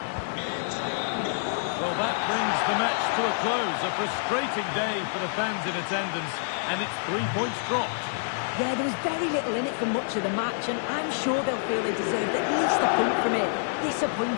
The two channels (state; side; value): silent; right; digital silence